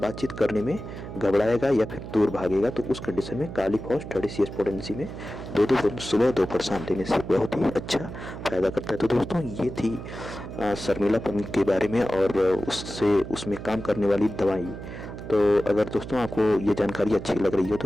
करने में घबराएगा या फिर दूर भागेगा, तो उस कंडीशन में काली फॉस 30 CH पोटेंसी में 2-2 बूंद सुबह दोपहर शाम देने से बहुत ही अच्छा फायदा करता है। तो दोस्तों, ये थी शर्मिलापन के बारे में और उसमें काम करने वाली दवाई। तो अगर दोस्तों आपको ये जानकारी अच्छी लग रही हो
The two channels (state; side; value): noise; right; hum, 10 dB below the sound